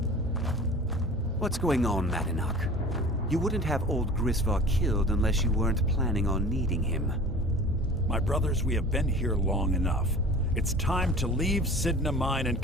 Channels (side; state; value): both; normal; correlation 0.42